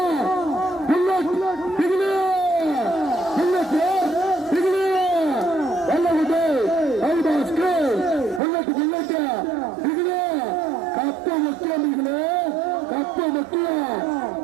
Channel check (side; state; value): left; drops out; at 8.4 s